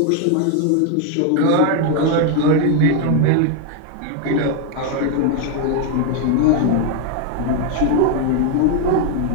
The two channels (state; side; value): different; both; correlation 0.01